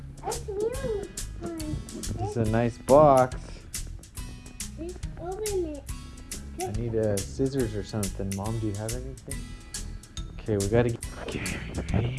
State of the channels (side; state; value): both; identical; correlation 1.00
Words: real one. It's a nice box. Let's open it. I need scissors or something. Mom, do you have anything? Okay, we gotta get... Okay, are you